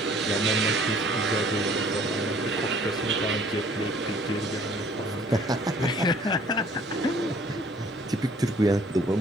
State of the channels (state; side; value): normal; both; correlation 0.57